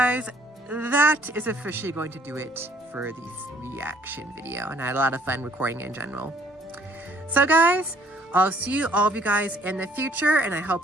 that is officially going to do it for this reaction video, and I had a lot of fun recording it in general. So guys, I'll see all of you guys in the future, and I hope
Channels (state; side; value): normal; both; correlation 0.61